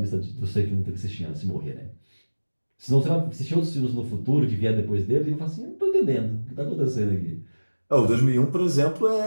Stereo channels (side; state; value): both; inverted; correlation -1.00